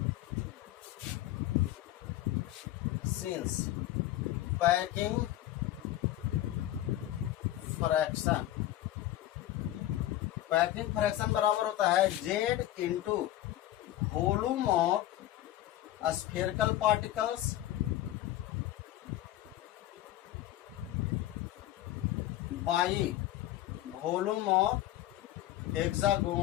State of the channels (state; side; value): quieter; right; 14.2 dB